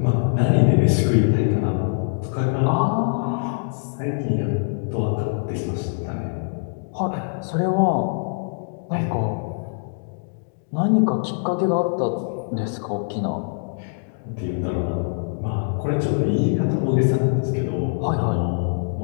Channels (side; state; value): right; silent; digital silence